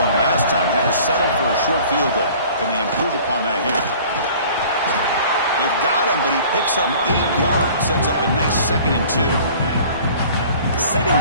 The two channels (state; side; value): inverted; both; correlation -0.48